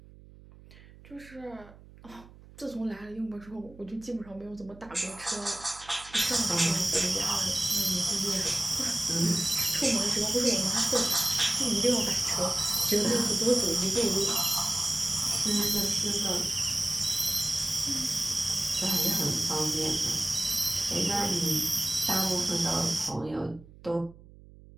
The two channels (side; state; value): right; noise; hum, 22 dB below the sound